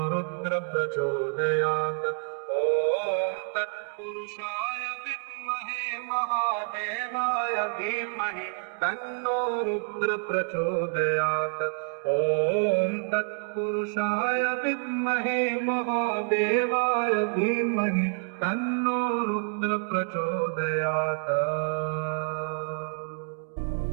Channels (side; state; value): left; silent; 59 dB below the other